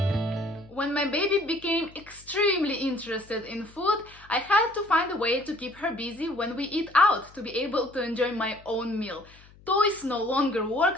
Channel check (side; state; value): left; noise; hum, 25 dB below the sound